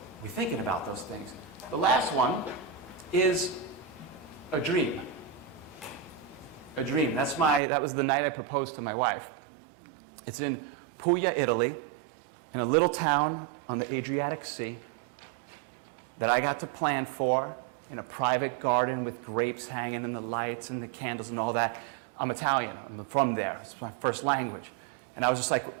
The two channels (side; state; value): left; drops out; at 7.6 s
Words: we're thinking about those things. The last one is a dream. A dream. That was the night I proposed to my wife. It's in Puglia, Italy, in a little town on the Adriatic Sea that I got to plan for in a private garden with grapes hanging and the lights and the candles and all that. I'm Italian. I'm from there. It's my first language. And I was just